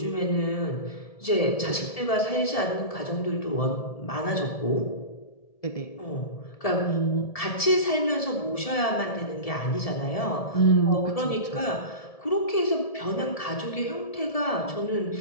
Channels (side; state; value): right; late; 1.7 ms